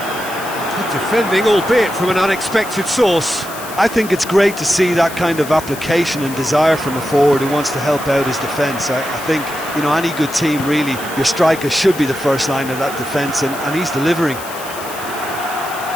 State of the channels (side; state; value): left; noise; hiss, 13 dB below the sound